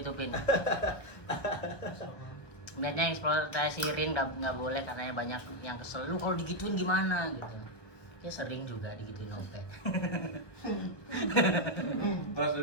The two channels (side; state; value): right; late; 1.1 ms